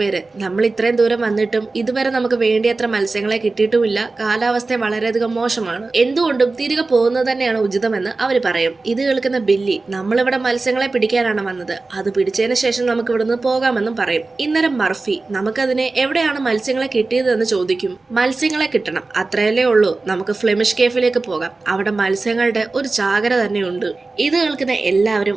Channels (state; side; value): quieter; left; 3.6 dB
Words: നമ്മൾ ഇത്രയും ദൂരം വന്നിട്ടും ഇതുവരെ നമുക്ക് വേണ്ടിയത്ര മത്സ്യങ്ങളെ കിട്ടിയിട്ടുമില്ല, കാലാവസ്ഥ വളരെയധികം മോശമാണ്, എന്തുകൊണ്ടും തിരികെ പോകുന്നത് തന്നെയാണ് ഉചിതമെന്ന് അവർ പറയും. ഇത് കേൾക്കുന്ന ബില്ലി നമ്മളിവിടെ മത്സ്യങ്ങളെ പിടിക്കാനാണ് വന്നത്, അത് പിടിച്ചതിന് ശേഷം നമുക്ക് ഇവിടുന്ന് പോകാമെന്നും പറയും. ഇന്നരം മർഫി നമുക്കതിനെ എവിടെയാണ് മത്സ്യങ്ങളെ കിട്ടിയതെന്ന് ചോദിക്കും. മത്സ്യങ്ങളെ കിട്ടണം, അത്രയല്ലേ ഉള്ളൂ, നമുക്ക് ഫ്ലെമിഷ് കേഫിലേക്ക് പോകാം, അവിടെ മത്സ്യങ്ങളുടെ ഒരു ചാകര തന്നെയുണ്ട്. ഇത് കേൾക്കുന്ന